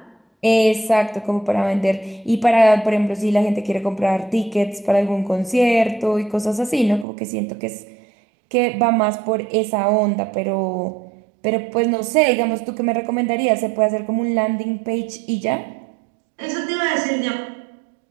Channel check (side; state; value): left; drops out; at 7.1 s